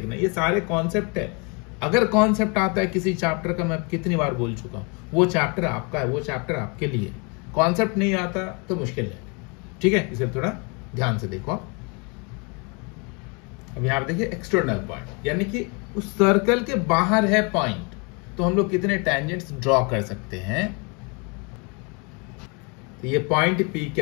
ये सारे कॉन्सेप्ट है। अगर कॉन्सेप्ट आता है किसी चैप्टर का, मैं कितनी बार बोल चुका हूं, वो चैप्टर आपका है, वो चैप्टर आपके लिए। कॉन्सेप्ट नहीं आता तो मुश्किल है। ठीक है, इसे थोड़ा ध्यान से देखो। अब यहां पर देखिए एक्सटर्नल पॉइंट, यानी कि उस सर्कल के बाहर है पॉइंट, तो हम लोग कितने टैंजेंट्स ड्रॉ कर सकते हैं। तो ये पॉइंट पी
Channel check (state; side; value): quieter; right; 32.6 dB